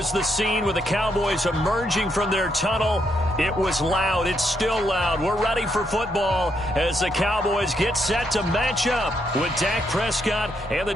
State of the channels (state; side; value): normal; both; correlation 0.77